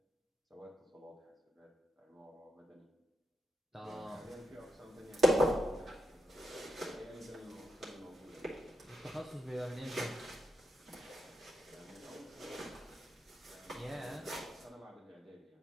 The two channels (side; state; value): both; normal; correlation 0.84